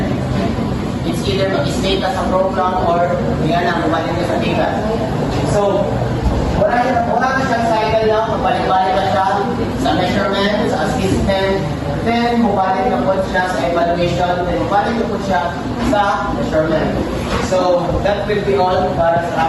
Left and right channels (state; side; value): identical; both; correlation 1.00